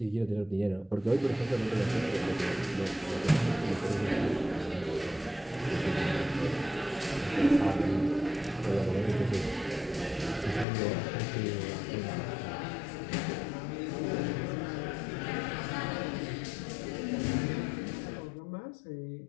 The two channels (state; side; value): drops out; right; at 10.7 s